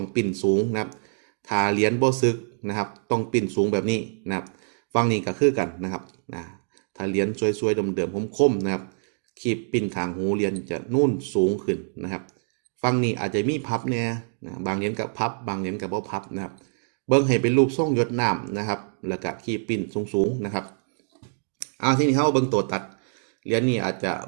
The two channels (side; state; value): left; silent; digital silence